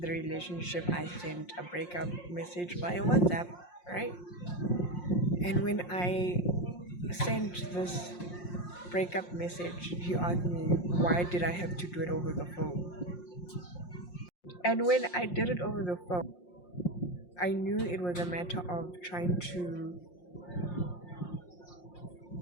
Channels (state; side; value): late; right; 5.6 ms